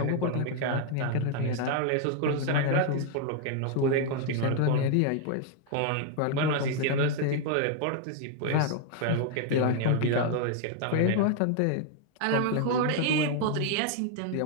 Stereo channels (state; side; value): different; both; correlation 0.00